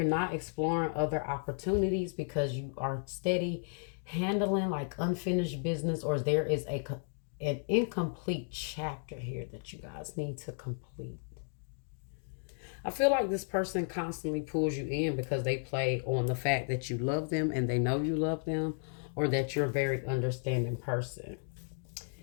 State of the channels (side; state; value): right; silent; 55 dB below the other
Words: not exploring other opportunities because you are steady handling like unfinished business, or there is an incomplete chapter here that you guys need to complete. I feel like this person constantly pulls you in because they play on the fact that you love them and they know you love them, or that you're a very understanding person.